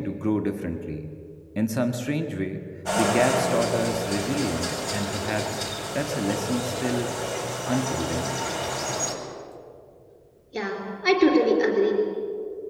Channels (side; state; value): both; identical; correlation 1.00